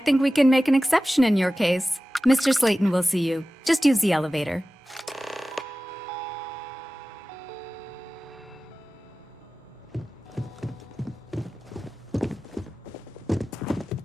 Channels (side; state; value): both; normal; correlation 0.96